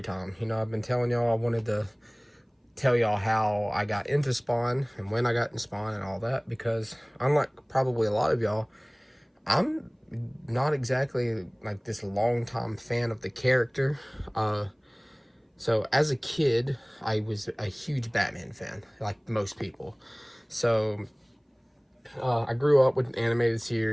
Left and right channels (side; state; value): both; identical; correlation 1.00